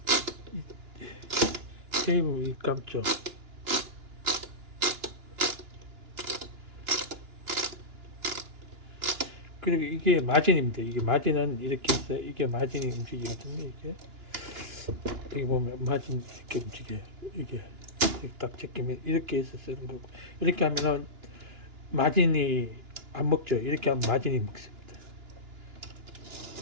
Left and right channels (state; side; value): late; left; 2.9 ms